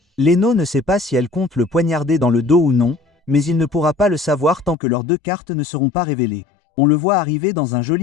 Leno ne sait pas si elle compte le poignarder dans le dos ou non, mais il ne pourra pas le savoir tant que leurs deux cartes ne seront pas révélées. On le voit arriver dans un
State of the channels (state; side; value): drops out; right; at 4.8 s